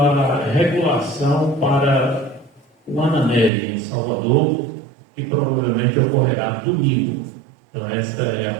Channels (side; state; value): left; drops out; at 3.5 s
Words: regulação para o Ananelli, em Salvador, que provavelmente ocorrerá domingo. Então esta é a